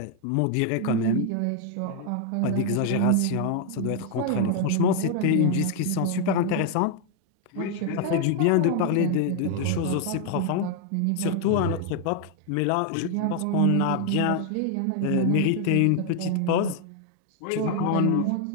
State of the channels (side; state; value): both; different; correlation 0.00